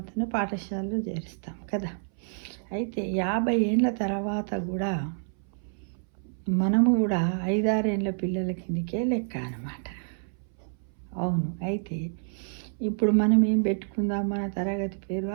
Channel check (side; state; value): left; silent; 59 dB below the other